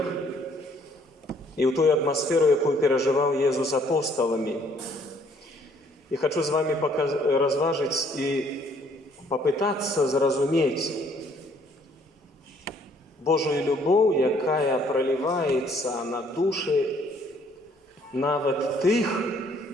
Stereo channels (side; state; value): both; normal; correlation 0.63